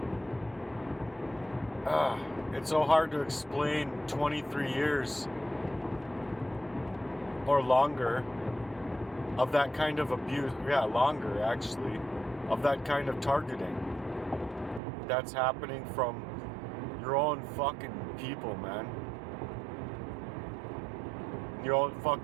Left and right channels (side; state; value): left; drops out; at 14.8 s